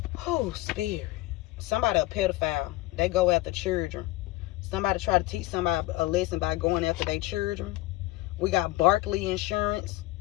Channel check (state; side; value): quieter; right; 18.3 dB